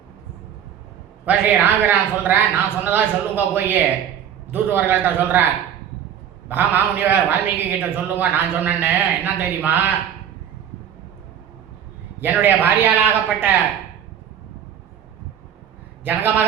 இப்போ ஸ்ரீ ராமபிரான் சொல்கிறேன், நான் சொன்னதா சொல்லுங்க, போய் தூதுவர்கள்ட்ட சொல்கிறேன், மகாமுனிவர் வால்மீகி கிட்ட சொல்லுங்க நான் சொன்னேன்னு. என்ன தெரியுமா, என்னுடைய பாரியாளாகப்பட்ட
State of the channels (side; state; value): left; quieter; 9.2 dB